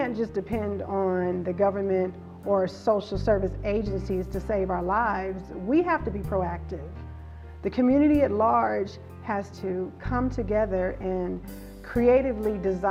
just depend on the government or social service agencies to save our lives. We have to be proactive. The community at large has to come together and creatively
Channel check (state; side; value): identical; both; correlation 1.00